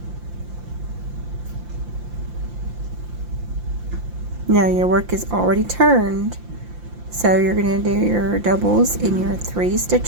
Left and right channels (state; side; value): late; left; 5.8 ms